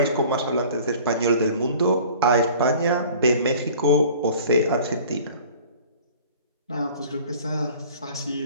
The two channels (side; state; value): both; inverted; correlation -0.47